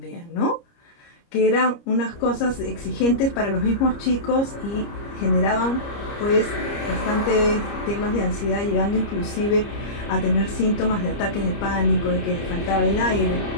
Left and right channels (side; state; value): right; late; 30 ms